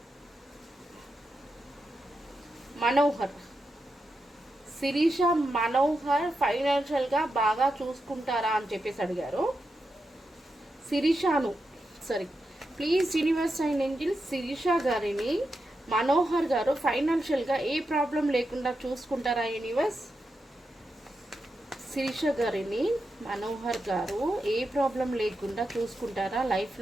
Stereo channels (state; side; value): normal; both; correlation 0.87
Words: మనోహర్ ఫైనాన్షియల్గా బాగా చూసుకుంటారా అని చెప్పేసి అడిగారు. Please universe and angel Shirisha గారిని మనోహర్ గారు ఫైనాన్షియల్గా ఏ ప్రాబ్లం లేకుండా చూసుకుంటారా యూనివర్స్? శిరీష గారిని మనోహర్ గారు ఏ ప్రాబ్లం లేకుండా చూసుకుంటారా లైఫ్